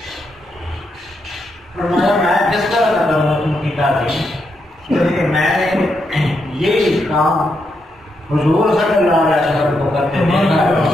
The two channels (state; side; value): normal; both; correlation 0.81